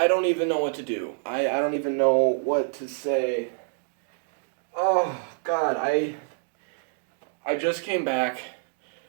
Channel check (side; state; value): left; silent; digital silence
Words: even know what to do. I don't even know what to say. Oh, God, I just came back